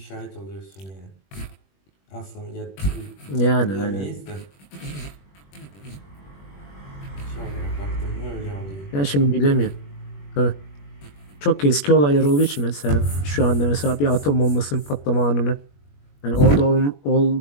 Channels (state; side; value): late; right; 21 ms